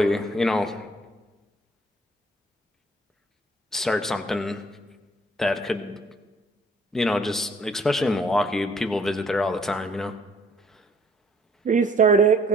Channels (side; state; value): both; normal; correlation 0.60